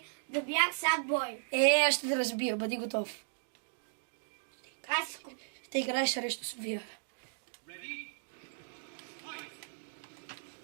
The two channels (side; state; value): left; silent; digital silence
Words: да бях Sad Boy. Аз ще те разбия, бъди готов. Аз Ще играеш срещу София.